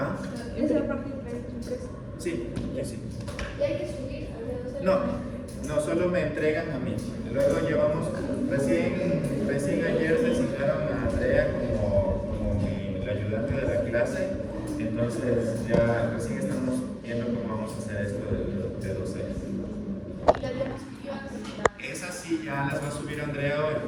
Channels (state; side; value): identical; both; correlation 1.00